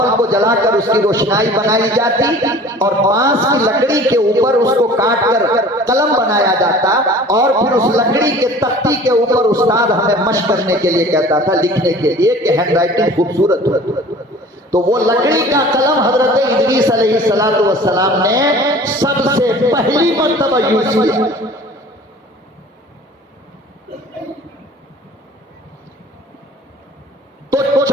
को जलाकर उसकी रोशनाई बनाई जाती और बांस की लकड़ी के ऊपर उसको काट कर कलम बनाया जाता और फिर उस लकड़ी के तख्ती के ऊपर उस्ताद हमें मशक करने के लिए कहता था, लिखने के लिए कि हैंडराइटिंग खूबसूरत हो। तो वो लकड़ी का कलम हजरत इदरीस अलैहिस्सलातु वस्सलाम ने सबसे पहली मर्तबा यूज किया। तो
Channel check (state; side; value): normal; both; correlation 0.45